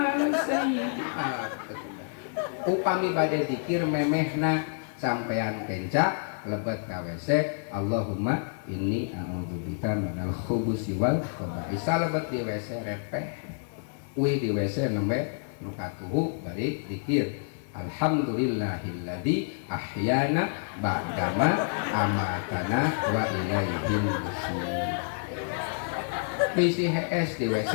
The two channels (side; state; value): right; silent; digital silence